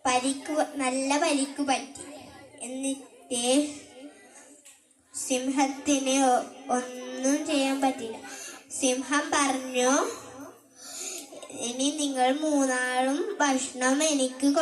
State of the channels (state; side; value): identical; both; correlation 1.00